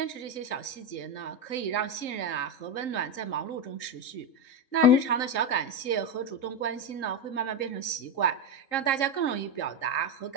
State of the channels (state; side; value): late; right; 3.8 ms